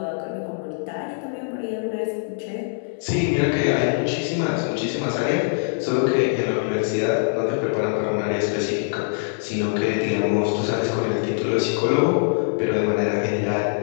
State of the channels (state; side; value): silent; right; digital silence